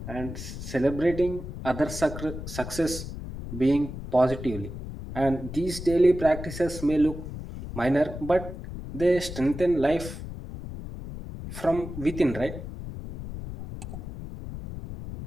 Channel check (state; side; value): noise; left; rumble, 9 dB below the sound